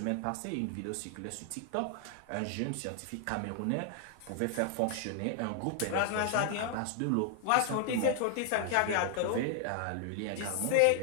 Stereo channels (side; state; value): both; different; correlation 0.00